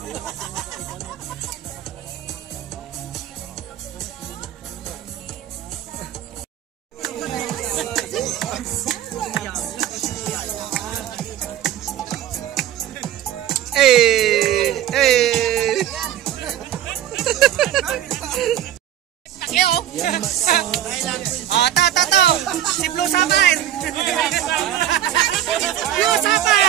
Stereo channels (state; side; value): quieter; left; 11.6 dB